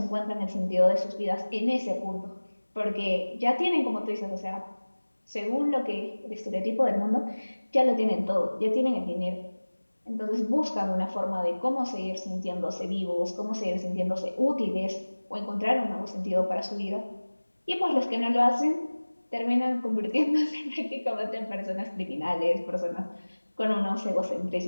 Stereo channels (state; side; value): inverted; both; correlation -1.00